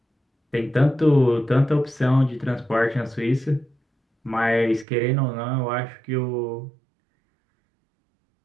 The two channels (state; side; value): drops out; left; at 4.9 s